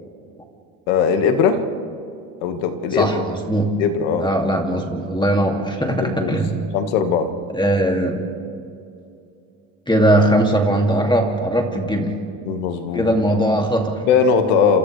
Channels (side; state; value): both; normal; correlation 0.42